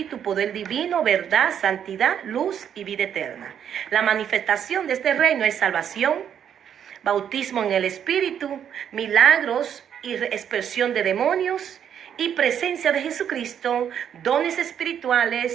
poder divino, verdad, santidad, luz y vida eterna. La manifestación de este reino es salvación, bautismo en el Espíritu, milagros y expresión de demonios y presencia de Jesucristo, dones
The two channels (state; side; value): quieter; left; 8.9 dB